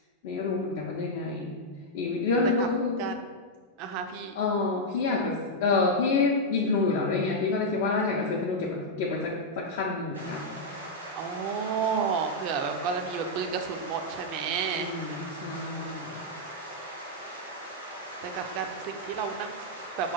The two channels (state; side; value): normal; both; correlation -0.03